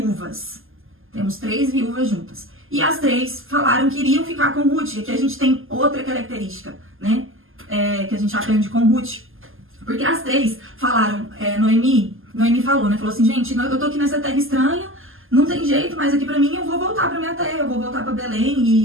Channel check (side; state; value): left; late; 0.59 ms